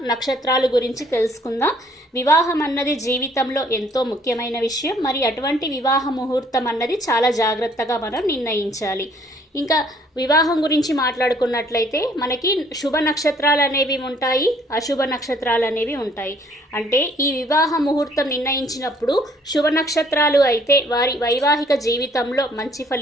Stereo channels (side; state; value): both; normal; correlation 0.61